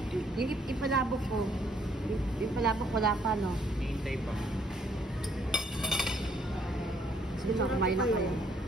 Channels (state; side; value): normal; both; correlation 0.67